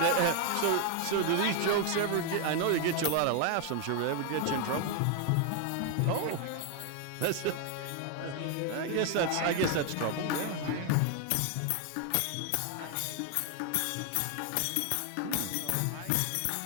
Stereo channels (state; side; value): different; both; correlation 0.01